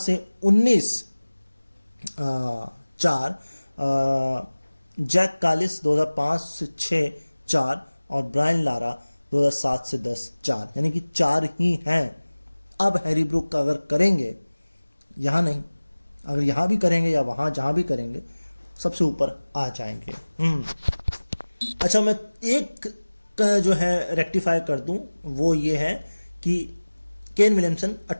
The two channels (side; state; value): both; inverted; correlation -1.00